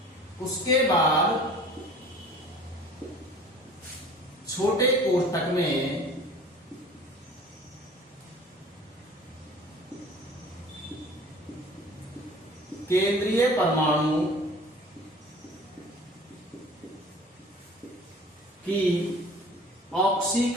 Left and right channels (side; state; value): both; normal; correlation 0.46